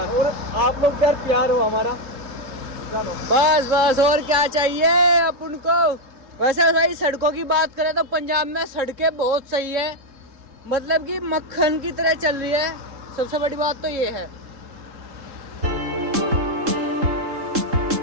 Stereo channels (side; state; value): left; late; 3.7 ms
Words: और आप लोग यार प्यार हो हमारा। चलो बस बस, और क्या चाहिए अपन को। वैसे भाई सड़कों की बात करें तो पंजाब में सड़कें बहुत सही है, मतलब कि मक्खन की तरह चल रही है। सबसे बड़ी बात तो ये है।